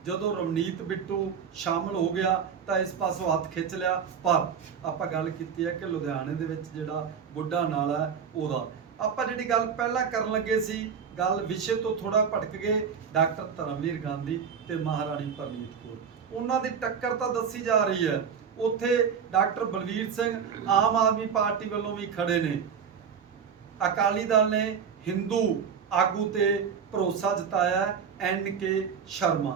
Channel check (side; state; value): left; quieter; 7.0 dB